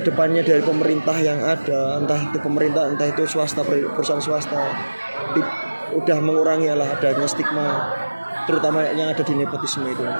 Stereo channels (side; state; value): both; inverted; correlation -1.00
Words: dari pemerintah yang ada, entah itu pemerintah entah itu swasta, perusahaan swasta, udah mengurangi adanya stigma terutama yang ada di nepotisme itu